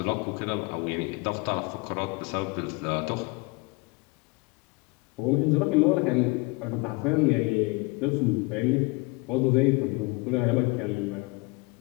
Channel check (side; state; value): right; quieter; 26.7 dB